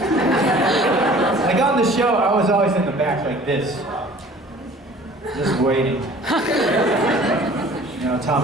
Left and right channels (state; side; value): normal; both; correlation 0.49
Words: on the show, I was always in the back like this, just waiting. You know,